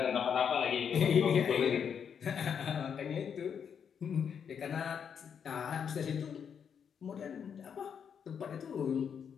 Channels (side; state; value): right; quieter; 7.4 dB